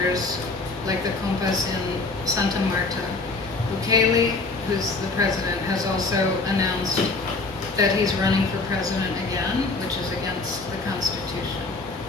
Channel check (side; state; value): right; quieter; 3.6 dB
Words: like the compas in Santa Marta. Bukele, who's the president, has also announced that he's running for president again, which is against the Constitution.